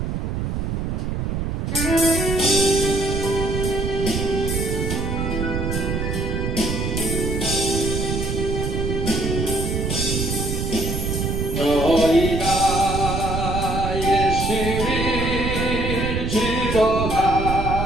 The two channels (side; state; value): right; noise; rumble, 1 dB below the sound